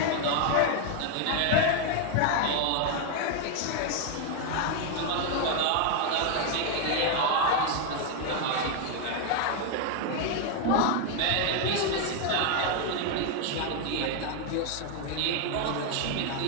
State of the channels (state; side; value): different; both; correlation 0.01